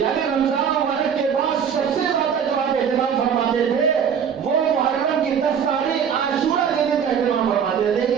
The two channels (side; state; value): left; quieter; 7.5 dB